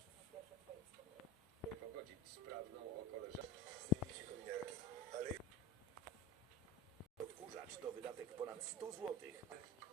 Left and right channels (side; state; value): both; normal; correlation 0.31